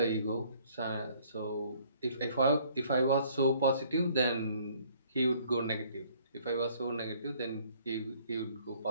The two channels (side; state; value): both; inverted; correlation -0.60